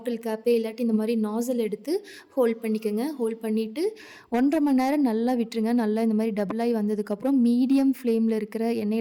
கேப்பு இல்லாட்டி இந்த மாரி நாஸல் எடுத்து ஹோல்ட் பண்ணிக்கங்க. ஹோல்ட் பண்ணிட்டு 1 1/2 மணி நேரம் நல்லா விட்டுருங்க. நல்லா இந்த மாரி டபுள் ஆயி வந்ததுக்கப்புறம் மீடியம் ஃப்ளேம்ல இருக்கிற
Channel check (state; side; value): identical; both; correlation 1.00